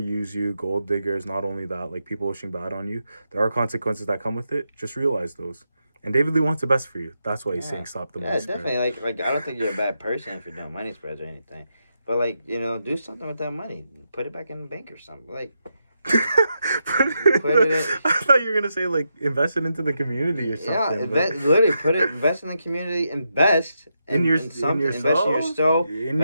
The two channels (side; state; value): both; inverted; correlation -0.84